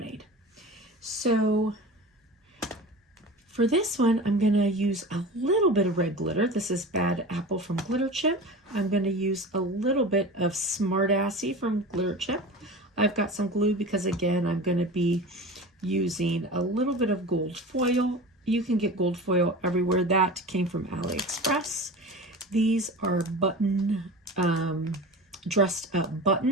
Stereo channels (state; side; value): normal; both; correlation 0.33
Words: So for this one, I'm going to use a little bit of red glitter. This is Bad Apple from Glitter Chip. I'm going to use a little bit of Smart Assy from Glitter Chip. I've got some glue because, again, I'm going to be using a little bit of gold foil. You can get gold foil everywhere. That came from AliExpress. These are dressed up